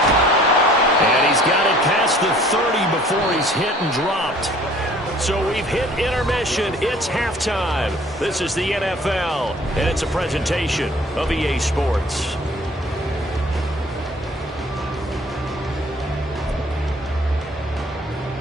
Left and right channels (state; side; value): normal; both; correlation 0.53